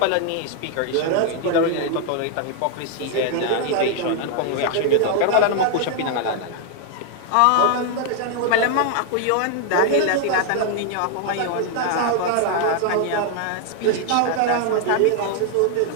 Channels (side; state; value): both; different; correlation 0.00